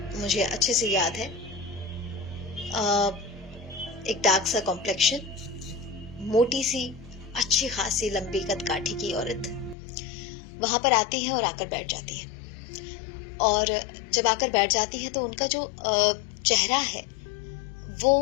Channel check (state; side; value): drops out; right; at 9.8 s